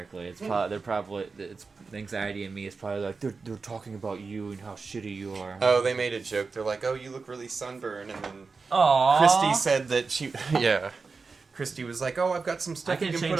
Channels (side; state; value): left; quieter; 4.5 dB